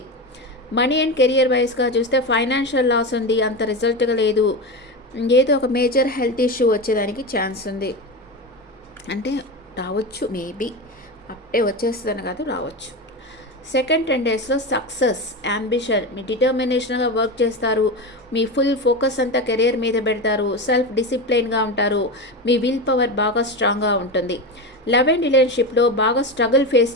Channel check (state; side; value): normal; both; correlation 0.21